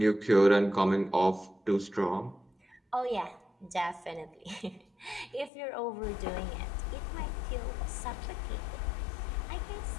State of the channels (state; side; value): drops out; right; at 5.5 s